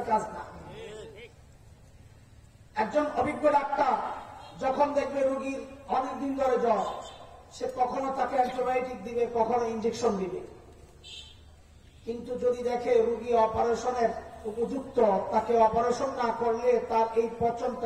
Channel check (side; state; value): both; identical; correlation 1.00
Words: কাজ না। একজন অভিজ্ঞ ডাক্তার যখন দেখবে রোগীর অনেকদিন ধরে জ্বর, সে কখনো তাকে অ্যান্টিবায়োটিক দিবে, কখনো ইঞ্জেকশন দিবে। কিন্তু যদি দেখে রোগী অপারেশনের উপযুক্ত, তাকে অপারেশন না করলে তার এই